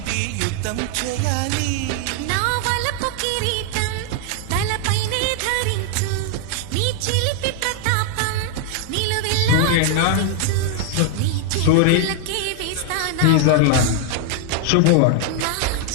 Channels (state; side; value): different; both; correlation 0.00